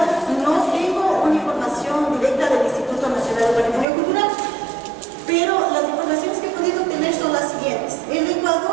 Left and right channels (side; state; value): left; drops out; at 3.9 s